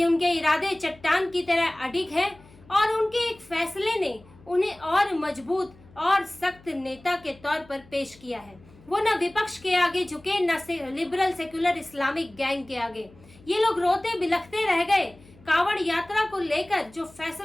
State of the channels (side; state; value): left; noise; hum, 25 dB below the sound